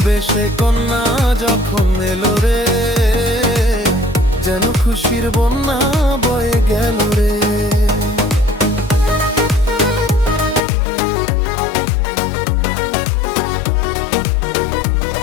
বেশে কন্যা যখন এলো রে, যেন খুশির বন্যা বয়ে গেল রে।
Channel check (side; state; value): right; drops out; at 10.6 s